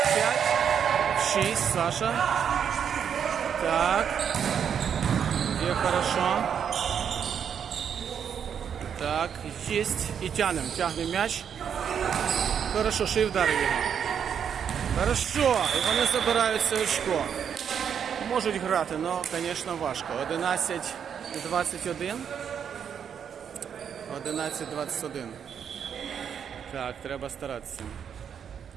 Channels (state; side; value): quieter; left; 7.9 dB